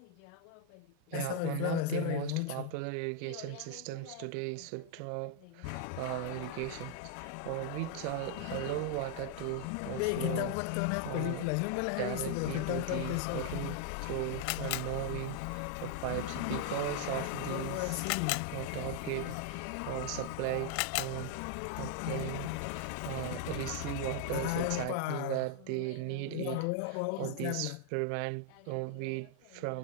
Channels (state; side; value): different; both; correlation 0.00